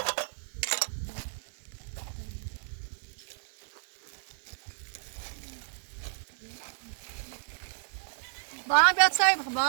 Bana bir atsay bak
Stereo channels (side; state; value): left; silent; 57 dB below the other